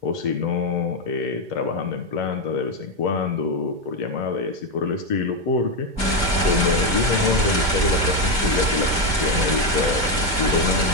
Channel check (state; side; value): late; left; 2.1 ms